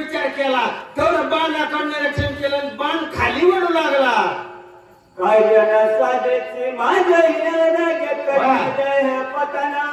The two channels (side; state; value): both; identical; correlation 1.00